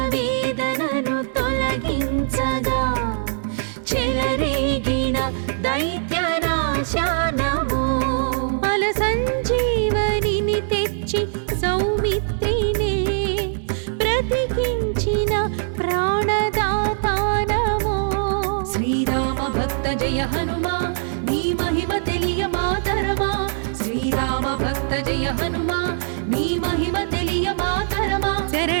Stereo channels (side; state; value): left; silent; 64 dB below the other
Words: వేదనను తొలగించగా చెలరేగిన దైత్యనాశానము అల సంజీవనిని తెచ్చి సౌమిత్రినే బ్రతికించిన ప్రాణదాతానము శ్రీరామ భక్త జయ హనుమా నీ మహిమ తెలియ మాతరమా శ్రీరామ భక్త జయ హనుమా నీ మహిమ తెలియ మాతరమా